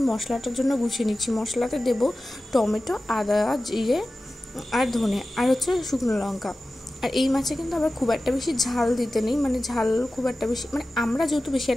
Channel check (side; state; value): both; normal; correlation 0.95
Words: মশলাটার জন্য গুছিয়ে নিচ্ছি। মশলাতে দেবো টমেটো, আদা, জিরে আর ধনে আর হচ্ছে শুকনো লঙ্কা। আর এই মাছে কিন্তু আবার খুব একটা বেশি ঝাল দিতে নেই, মানে ঝাল খুব একটা বেশি, মানে আমরা যেহেতু বেশি